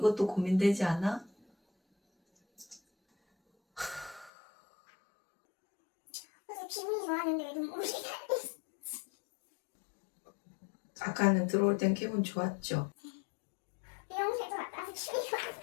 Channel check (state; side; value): drops out; right; at 4.3 s